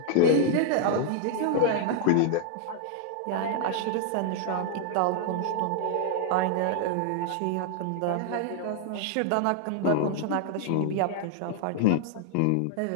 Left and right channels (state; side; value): different; both; correlation 0.00